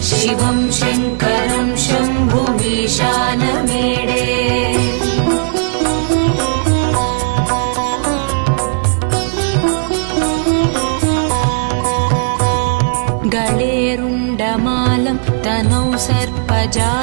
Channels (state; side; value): silent; left; digital silence